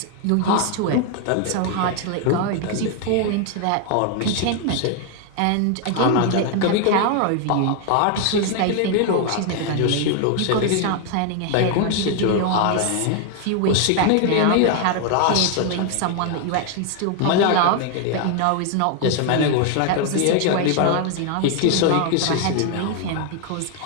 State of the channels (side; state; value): both; different; correlation 0.00